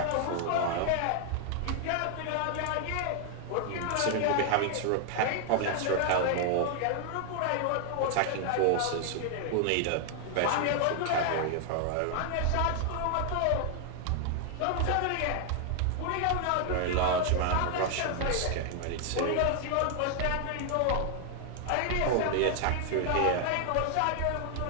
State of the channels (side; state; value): both; different; correlation 0.00